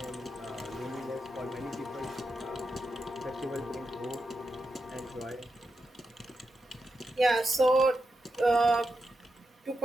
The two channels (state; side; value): normal; both; correlation 0.87